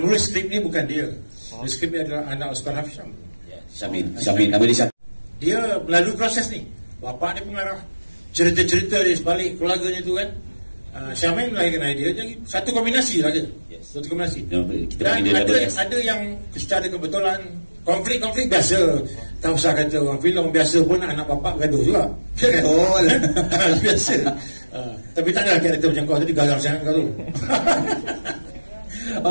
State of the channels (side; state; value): both; inverted; correlation -1.00